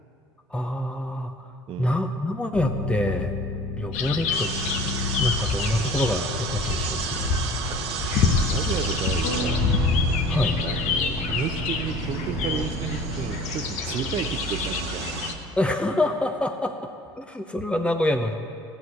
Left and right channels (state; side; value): normal; both; correlation 0.47